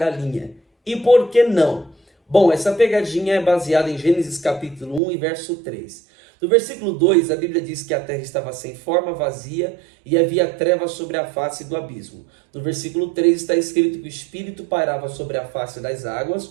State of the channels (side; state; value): left; drops out; at 5.0 s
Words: E por que não? Bom, essa pegadinha é baseada em Gênesis capítulo 1 e verso 3. No versículo 2, a Bíblia diz que a terra estava sem forma, vazia, e havia trevas sobre a face do abismo. No versículo 3 está escrito que o Espírito pairava sobre a face das